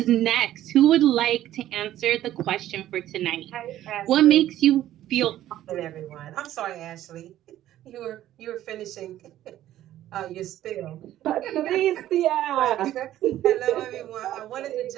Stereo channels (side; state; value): left; quieter; 13.1 dB